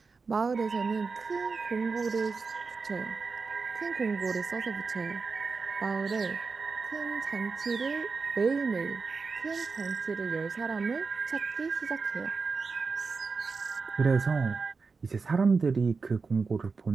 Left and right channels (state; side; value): quieter; left; 4.6 dB